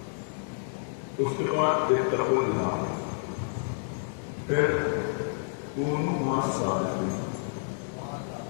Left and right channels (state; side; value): silent; right; digital silence